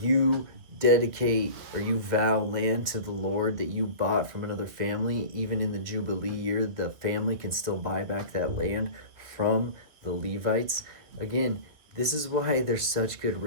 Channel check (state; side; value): late; left; 2.1 ms